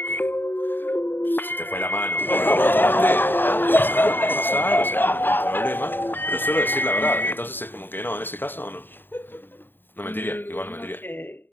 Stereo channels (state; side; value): late; right; 0.095 ms